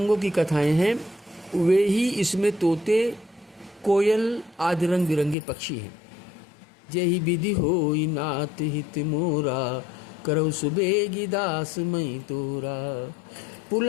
की कथाएं हैं, वे ही इसमें तोते, कोयल आदि रंग बिरंगे पक्षी हैं। जेहि विधि होई नाथ हित मोरा, करौ सुबेगी दास मई तोरा।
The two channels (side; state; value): right; drops out; at 5.4 s